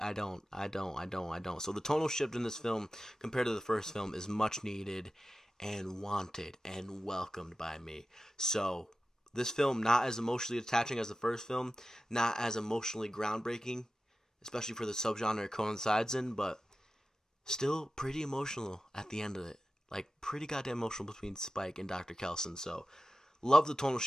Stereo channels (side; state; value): both; normal; correlation 0.94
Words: don't. So the tonal shift in this film compared to the first film is much needed and wanted and welcomed by me. So this film, not as emotionally attaching as the first film, not as emotionally groundbreaking, especially for the subgenre it coincides in, but still pretty emotional at the end of it. Like, pretty goddamn emotional between Spike and Dr. Kelson. So, love the tonal